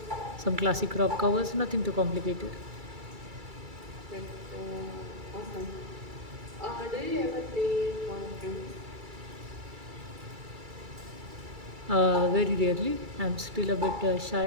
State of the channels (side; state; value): left; late; 2.3 ms